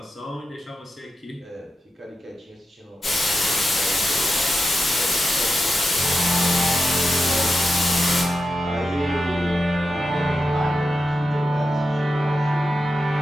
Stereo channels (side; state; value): both; normal; correlation 0.89